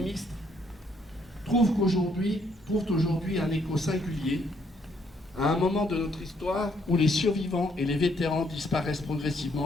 trouvent aujourd'hui un écho singulier à un moment de notre histoire où les survivants et les vétérans disparaissent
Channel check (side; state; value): both; normal; correlation 0.70